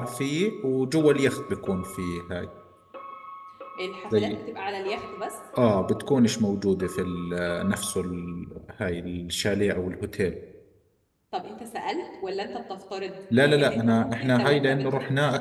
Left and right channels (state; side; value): identical; both; correlation 1.00